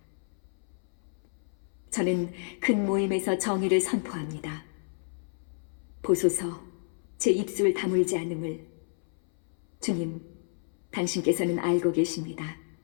저는 큰 모임에서 정의를 선포합니다. 보소서, 제 입술 다물지 않음을. 주님, 당신께서는 알고 계십니다.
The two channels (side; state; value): right; silent; 58 dB below the other